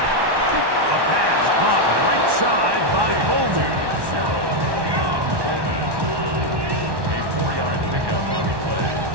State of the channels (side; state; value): left; late; 1.1 ms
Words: A pass caught right side by Coleman. A 4-yard pickup on the play.